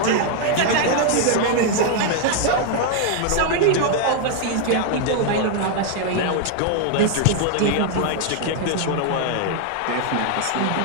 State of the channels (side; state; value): both; different; correlation 0.00